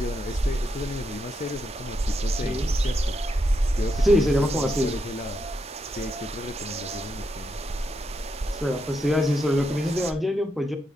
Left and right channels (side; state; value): both; normal; correlation 0.82